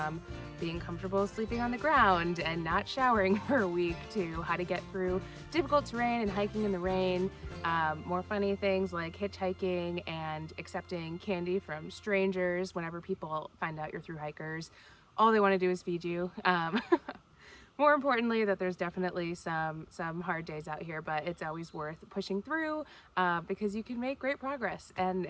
being comfortable sleeping on the ground and not showering for a week to how to get through difficult terrain and hiking in the rain. More funny things like hitchhiking and accepting candy from strangers whenever people find out you're through hikers. All they want to do is feed you. More importantly, that there's definitely some hard days out here, but it's always worth pushing through because you can make great progress,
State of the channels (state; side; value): identical; both; correlation 1.00